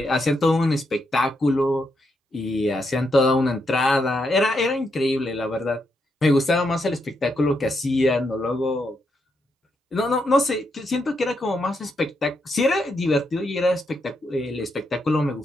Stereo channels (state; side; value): normal; both; correlation 0.81